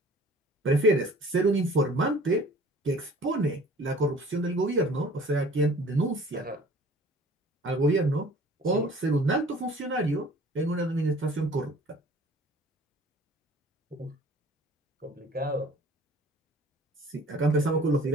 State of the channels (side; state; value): both; normal; correlation 0.49